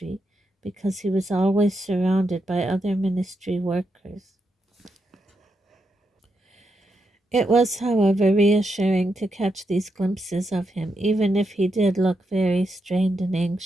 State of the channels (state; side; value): normal; both; correlation 0.83